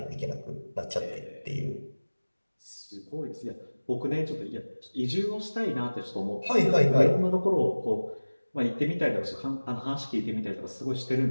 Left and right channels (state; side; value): inverted; both; correlation -1.00